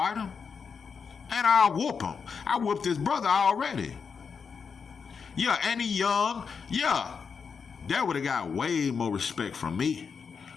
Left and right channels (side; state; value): right; quieter; 5.9 dB